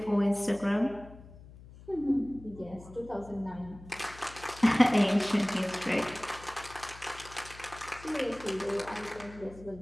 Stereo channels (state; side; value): noise; left; hum, 19 dB below the sound